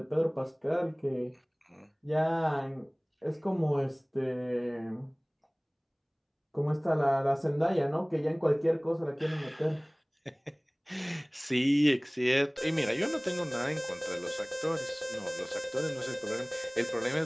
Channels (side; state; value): both; identical; correlation 1.00